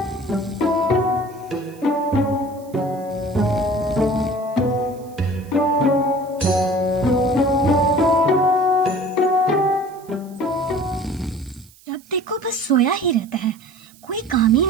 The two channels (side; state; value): right; noise; hiss, 26 dB below the sound